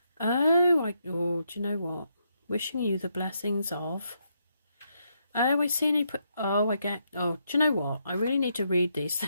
Oh, do you know what? Wishing you the blessings of. Oh, I see. Oh, I get. Oh, do you know what? I really need to read these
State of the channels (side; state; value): both; inverted; correlation -0.78